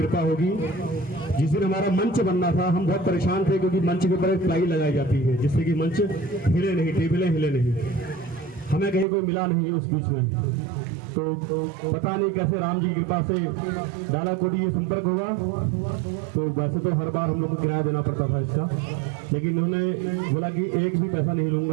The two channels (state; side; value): drops out; left; at 9.1 s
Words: होगी। जिस दिन हमारा मंच बनना था हम बहुत परेशान थे, क्योंकि मंच के ऊपर एक प्लाई लगाई जाती है जिससे कि मंच हिले नहीं, टेबलें हिले नहीं। हमें कहीं कोई मिला नहीं उस बीच में, तो पता नहीं कैसे राम जी की कृपा से डालाकोटी ये संपर्क हुआ। तो वैसे तो हर बार हम लोग को किराया देना पड़ता था इसका, लेकिन उन्होंने बोला कि एक भी पैसा नहीं